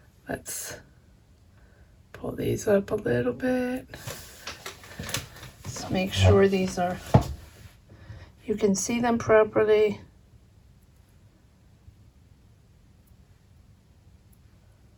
Let's pull these up a little bit. Let's make sure these are, you can see them properly.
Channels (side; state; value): both; identical; correlation 1.00